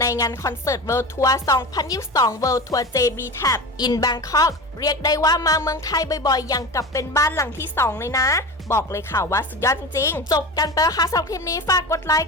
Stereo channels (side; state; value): both; normal; correlation 0.28